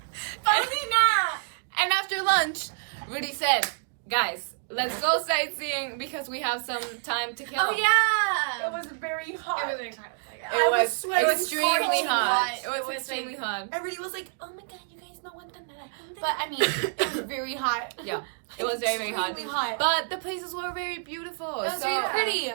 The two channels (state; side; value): silent; left; digital silence